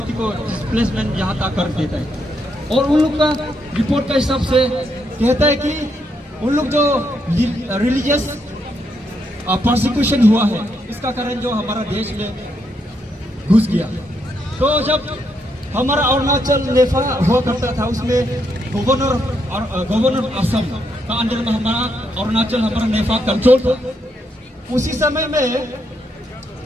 को डिस्प्लेसमेंट यहाँ तक कर देता है। और उन लोग का रिपोर्ट का हिसाब से कहता है कि उन लोग जो रिलीजियस प्रोसिक्यूशन हुआ है, इसका कारण जो हमारा देश में घुस गया। तो जब हमारा अरुणाचल नेफा हुआ करता था, उसमें गवर्नर असम का अंडर में हमारा अरुणाचल, हमारा नेफा कंट्रोल था। उसी समय में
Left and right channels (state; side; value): normal; both; correlation 0.78